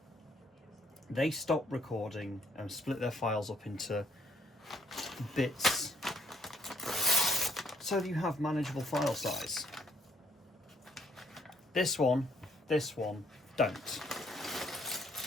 they stop recording and split their files up into bits so that you have manageable file size. This one don't.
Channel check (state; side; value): normal; both; correlation 0.66